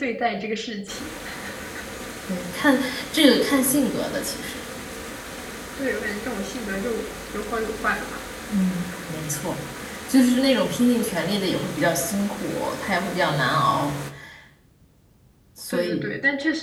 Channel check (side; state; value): both; identical; correlation 1.00